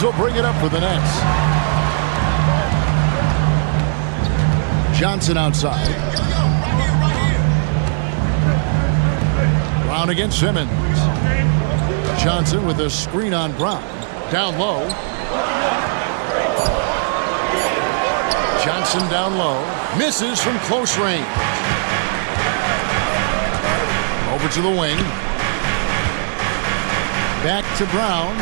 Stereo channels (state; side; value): silent; left; 61 dB below the other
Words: will bring it up for the Nets. Johnson outside. Brown against Simmons. Johnson with a screen on Brown. Down low. Johnson down low. Misses from close range. Over to the wing. Back to Brown.